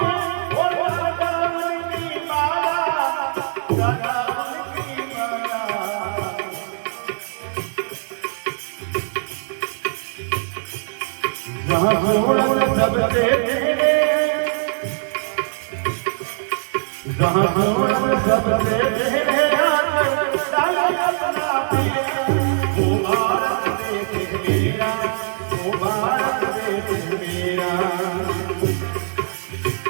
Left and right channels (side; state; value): left; silent; 65 dB below the other